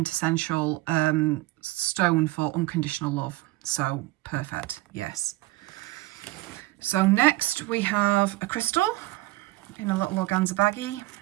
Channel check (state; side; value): quieter; left; 19.3 dB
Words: stone for unconditional love. So perfect, yes. So next we have a crystal in a little organza baggie.